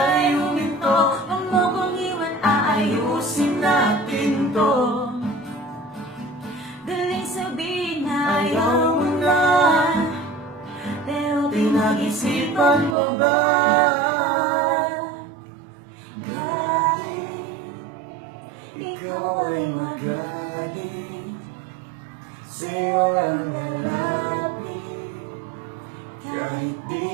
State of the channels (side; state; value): left; drops out; at 13.0 s